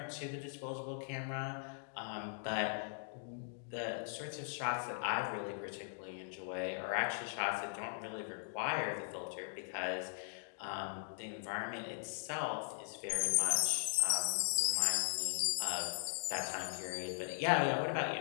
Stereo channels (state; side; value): silent; right; digital silence